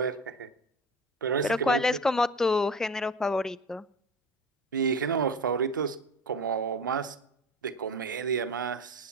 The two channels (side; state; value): both; normal; correlation 0.31